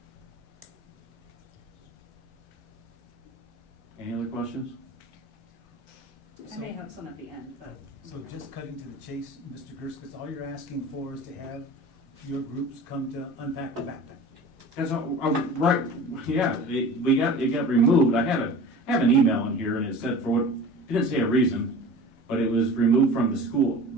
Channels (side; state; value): both; normal; correlation 0.38